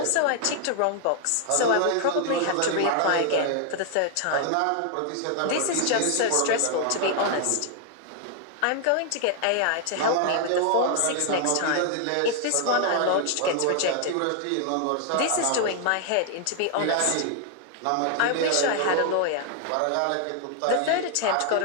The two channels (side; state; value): both; different; correlation 0.00